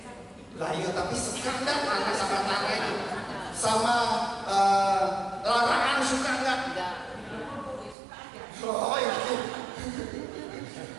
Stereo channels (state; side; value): drops out; left; at 8.0 s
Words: Lah iya, tapi suka nggak tanah sama tanah itu? Sama larangan suka nggak? Oh itu.